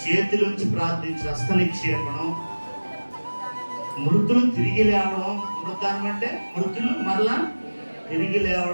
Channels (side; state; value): both; inverted; correlation -1.00